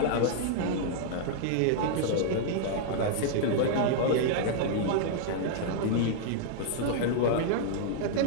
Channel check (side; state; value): both; different; correlation -0.01